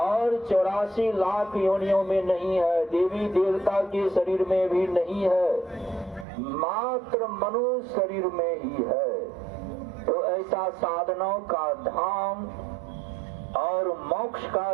84 लाख योनियों में नहीं है, देवी देवता के शरीर में भी नहीं है, मात्र मनुष्य शरीर में ही है। तो ऐसा साधनों का धाम और मोक्ष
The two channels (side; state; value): left; drops out; at 6.2 s